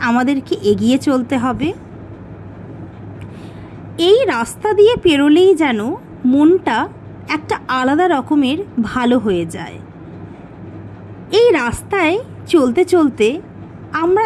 আমাদেরকে এগিয়ে চলতে হবে। এই রাস্তা দিয়ে পেরোলেই যেন মনটা একটা আলাদা রকমের ভালো হয়ে যায়। এই রাস্তায় চলতে চলতে আমরা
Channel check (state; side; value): identical; both; correlation 1.00